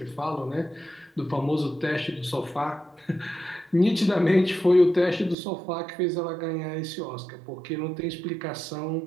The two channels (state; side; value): drops out; left; at 5.4 s